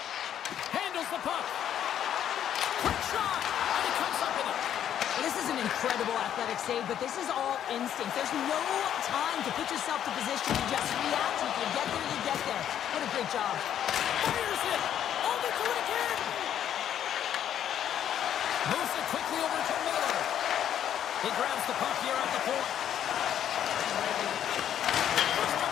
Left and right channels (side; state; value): right; quieter; 10.1 dB